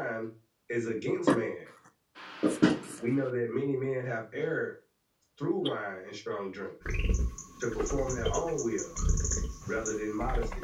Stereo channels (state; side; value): identical; both; correlation 1.00